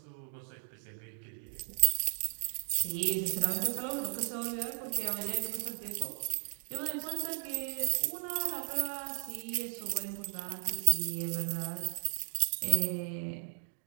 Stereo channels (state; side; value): silent; left; 54 dB below the other